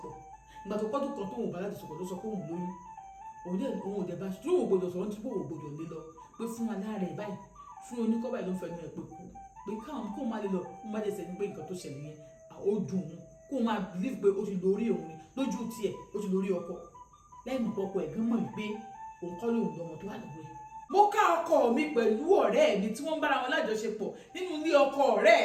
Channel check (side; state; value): both; identical; correlation 1.00